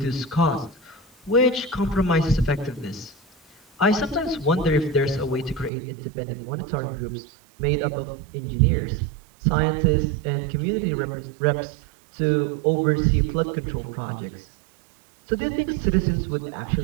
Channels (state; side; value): drops out; left; at 5.7 s